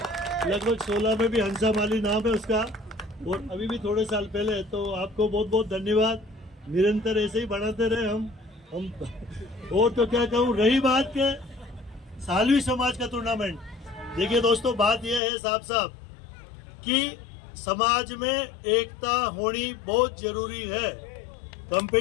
में भी हंसा माली नाम है उसका, और अभी भी थोड़े साल पहले। तो आपको बहुत बहुत धन्यवाद, निरंतर ऐसे ही बढ़ाते रहे हम और तो क्या कहूँ। रही बात के सालवी समाज का टूर्नामेंट, देखिए दोस्तों, बात यह है साहब साहब कि समाज में एकता होनी बहुत जरूरी है।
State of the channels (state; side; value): drops out; right; at 15.2 s